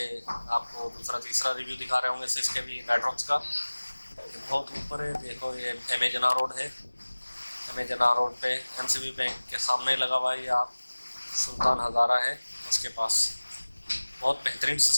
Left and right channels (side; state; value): both; inverted; correlation -1.00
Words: आपको दूसरा तीसरा रिव्यू दिखा रहे होंगे 6 केवी मैट्रिक्स का। ये बहुत ऊपर है। देखो, ये एमेजना रोड है। एमेजना रोड पे MCB बैंक के सामने लगा हुआ है। ये आप सुल्तान हज़ारा है उसके पास। बहुत बेहतरीन